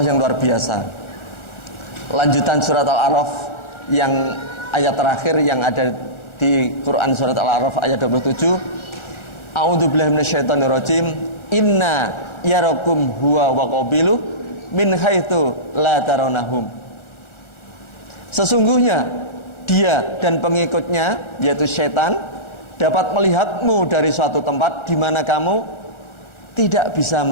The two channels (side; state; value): right; late; 1.4 ms